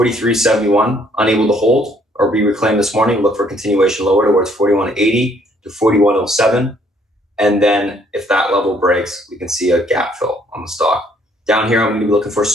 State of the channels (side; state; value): both; normal; correlation 0.64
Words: unable to hold or be reclaimed this morning, look for continuation lower towards 41.80 to 41.07. And then if that level breaks, we can see a gap fill on the stock. Down here, I'm going to be looking for